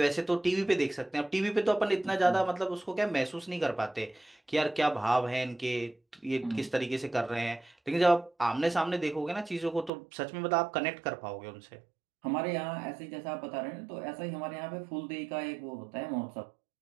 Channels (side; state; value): left; drops out; at 9.9 s